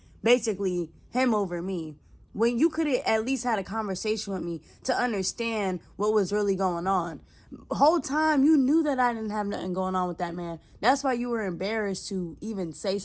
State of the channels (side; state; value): both; identical; correlation 1.00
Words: basically him over me, when you could have at least had a conversation with me to understand what was really going on. Whole time you knew that I didn't have nothing going on with that man. That's why you were embarrassed to even say